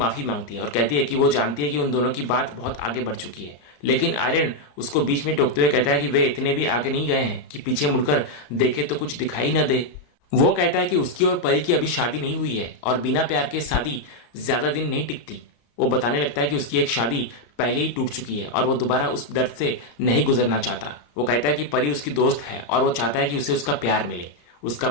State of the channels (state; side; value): late; right; 34 ms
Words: मांगती है और कहती है कि वो जानती है कि उन दोनों की बात बहुत आगे बढ़ चुकी है, लेकिन आर्यन उसको बीच में टोकते हुए कहता है कि वे इतने भी आगे नहीं गए हैं कि पीछे मुड़कर देखे तो कुछ दिखाई न दे। वो कहता है कि उसकी और परी की अभी शादी नहीं हुई है और बिना प्यार के शादी ज्यादा दिन नहीं टिकती। वो बताने लगता है कि उसकी एक शादी पहले ही टूट चुकी है और वो दोबारा उस दर्द से नहीं गुजरना चाहता। वो कहता है कि परी उसकी दोस्त है और वो चाहता है कि उसे उसका प्यार मिले। उसका